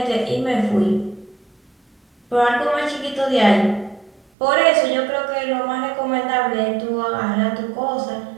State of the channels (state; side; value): drops out; left; at 4.2 s